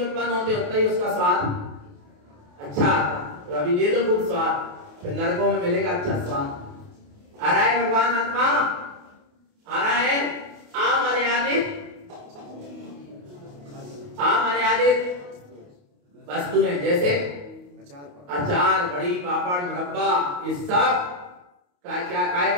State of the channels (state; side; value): late; left; 28 ms